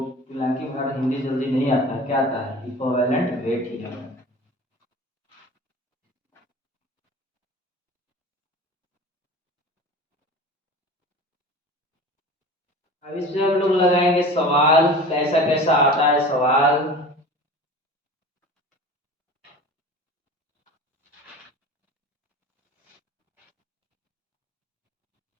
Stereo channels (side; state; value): both; normal; correlation 0.37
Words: तुलांकी भार हिंदी जल्दी नहीं आता, क्या आता है, इक्विवेलेंट वेट ही आता है। अब इससे हम लोग लगाएंगे सवाल, कैसा कैसा आता है सवाल।